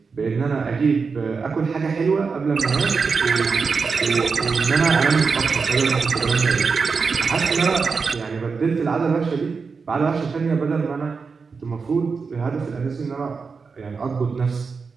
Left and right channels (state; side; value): quieter; left; 5.0 dB